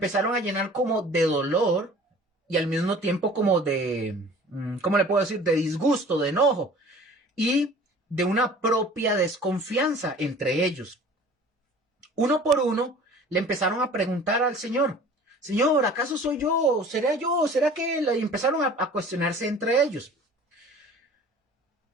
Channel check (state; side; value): normal; both; correlation 0.46